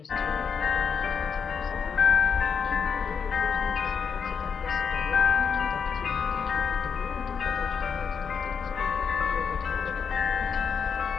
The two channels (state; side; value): quieter; right; 6.4 dB